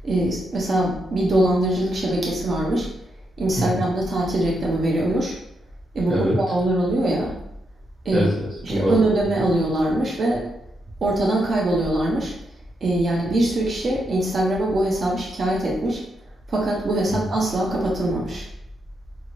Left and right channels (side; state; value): both; normal; correlation 0.82